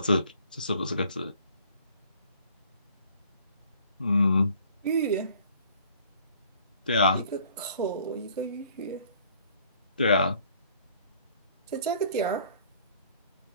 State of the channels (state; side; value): inverted; both; correlation -0.56